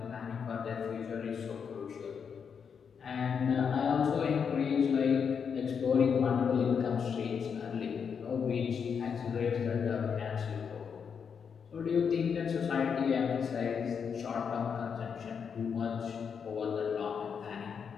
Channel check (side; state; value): right; quieter; 6.7 dB